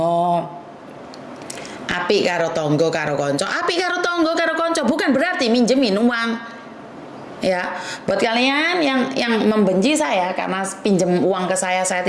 apik karo tonggo karo konco. Apik karo tonggo karo konco bukan berarti minjemin uang. Ya, buat kalian yang membenci saya karena pinjem uang ke saya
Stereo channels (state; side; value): identical; both; correlation 1.00